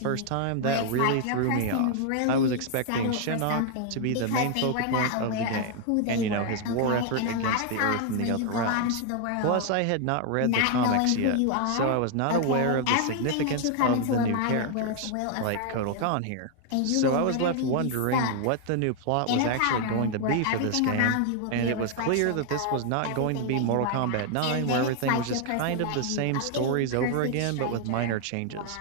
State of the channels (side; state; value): both; different; correlation 0.00